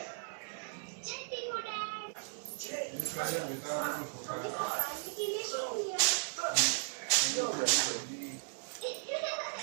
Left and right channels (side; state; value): left; silent; digital silence